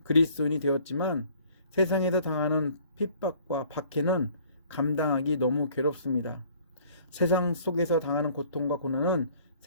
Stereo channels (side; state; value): both; inverted; correlation -0.55